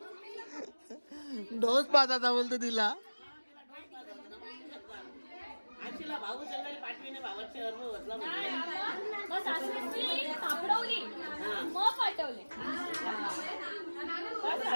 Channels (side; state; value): both; inverted; correlation -1.00